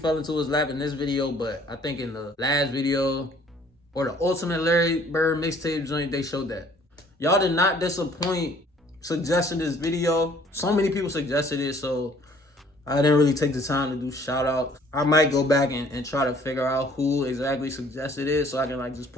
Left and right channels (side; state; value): both; normal; correlation 0.57